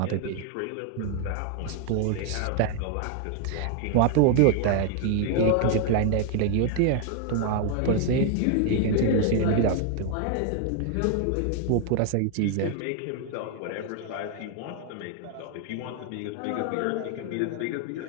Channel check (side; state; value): both; different; correlation 0.00